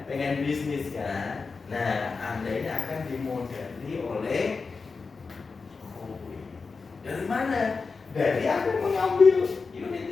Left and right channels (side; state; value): right; quieter; 4.6 dB